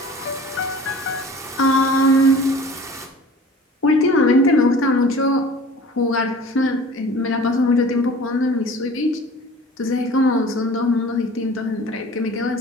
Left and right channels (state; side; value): normal; both; correlation 0.44